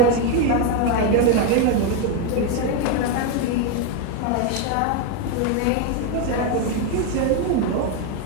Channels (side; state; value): both; different; correlation 0.02